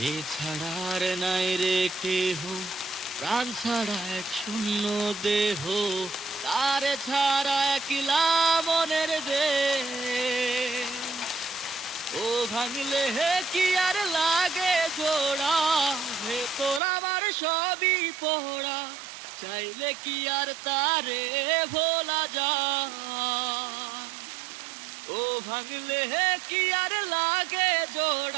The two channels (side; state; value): left; drops out; at 16.8 s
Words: ছাড়া আর নাই রে কেহ, প্রাণ ছাড়া এক শূন্য দেহ, তারে ছাড়া একলা মনের দেশ। ও ভাঙলে কি আর লাগে জোড়া, ভেতর আমার সবই পোড়া, চাইলে কি আর তারে ভোলা যায়। ও ভাঙলে কি আর লাগে